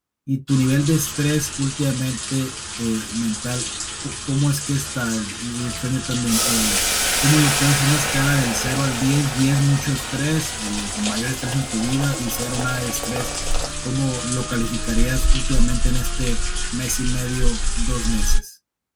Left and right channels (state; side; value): identical; both; correlation 1.00